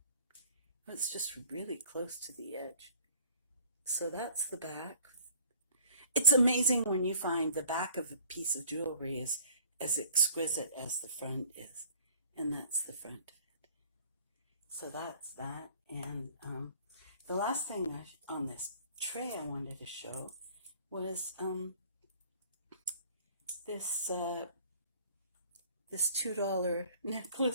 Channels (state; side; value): inverted; both; correlation -0.53